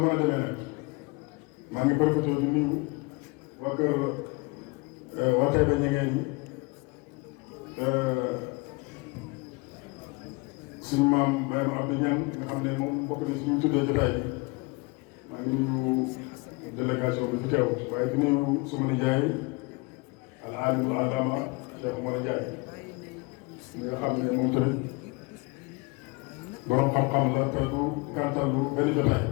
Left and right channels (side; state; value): right; quieter; 27.1 dB